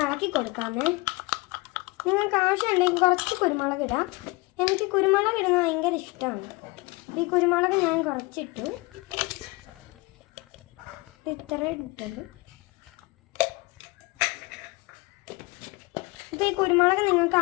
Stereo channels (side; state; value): right; quieter; 23.9 dB